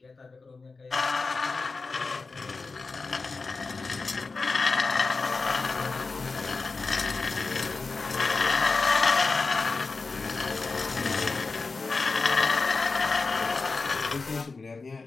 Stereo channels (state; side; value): quieter; right; 4.1 dB